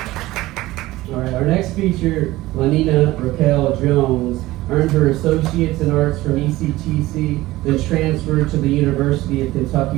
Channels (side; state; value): left; quieter; 17.7 dB